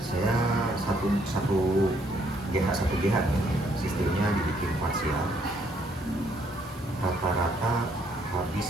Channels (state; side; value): normal; both; correlation 0.69